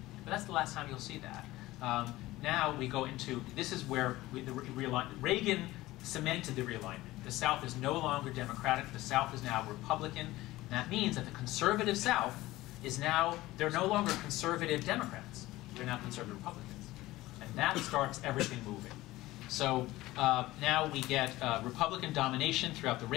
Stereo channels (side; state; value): right; quieter; 17.7 dB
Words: But that's the last time you'll see that. Now we go into, this is where Reagan cemented the realignment. The South is no longer Democratic. The South is now Republican. And that means that the conservative South is now, they're no longer conservative Democrats. They're now conservative Republicans. And that starts everything moving. So now we get Republican domination throughout the